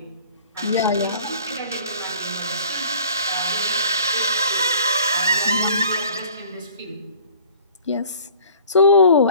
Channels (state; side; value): inverted; both; correlation -0.51